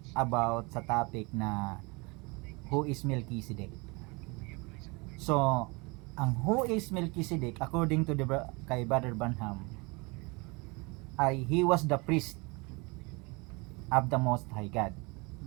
about sa topic na who is Melchizedek. So, ang who is Melchizedek according to kay Brother Branham ay he was the priest of the Most High God.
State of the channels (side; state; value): left; quieter; 27.6 dB